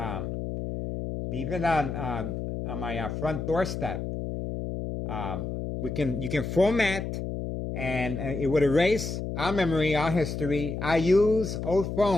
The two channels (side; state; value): left; noise; hum, 4 dB below the sound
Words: my front doorstep. You can format, and it would erase our memory, our history. I use old